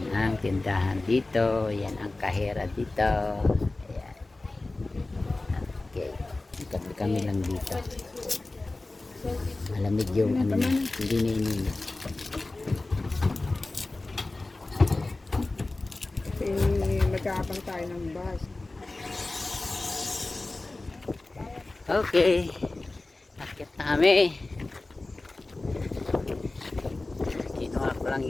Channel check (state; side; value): quieter; right; 3.1 dB